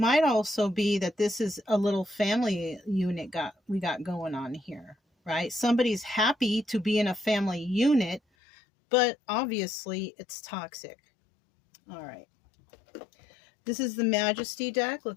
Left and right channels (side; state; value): right; drops out; at 8.2 s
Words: also be that this is a little family unit we got going on here, right? Somebody's happy to be in a family unit, but obviously it's toxic. All right. This is the Majesty deck.